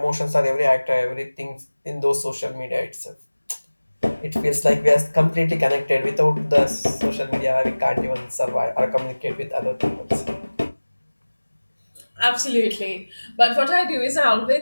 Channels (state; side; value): inverted; both; correlation -1.00